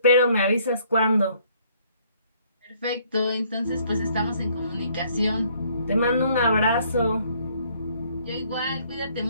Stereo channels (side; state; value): both; inverted; correlation -0.64